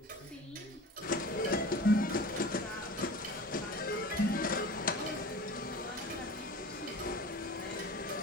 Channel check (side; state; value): both; normal; correlation 0.38